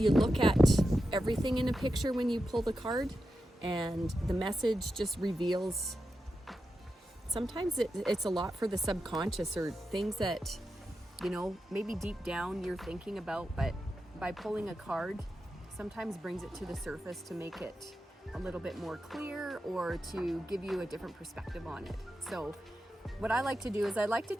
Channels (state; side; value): normal; both; correlation 0.89